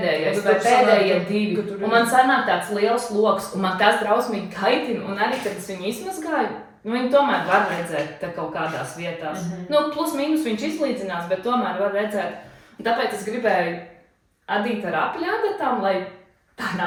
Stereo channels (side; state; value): both; identical; correlation 1.00